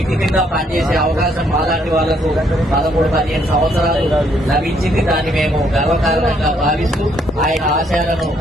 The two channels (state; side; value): normal; both; correlation 0.70